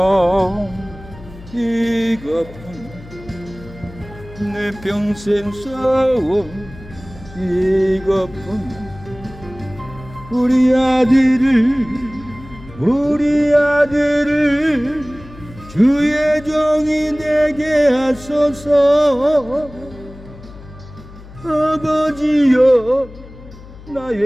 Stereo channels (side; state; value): left; noise; hum, 18 dB below the sound